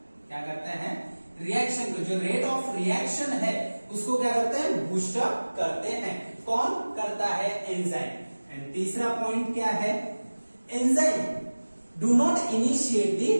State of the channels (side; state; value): both; inverted; correlation -1.00